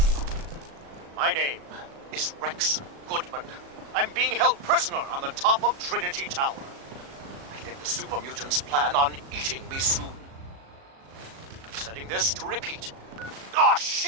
My name is Rex Goodman. I'm being held prisoner on the top of Trinity Tower. I think the super mutants plan on eating me soon. I'm setting this to repeat. Oh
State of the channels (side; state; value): left; late; 37 ms